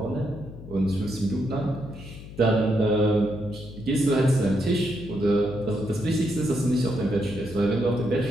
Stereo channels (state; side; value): noise; left; hum, 15 dB below the sound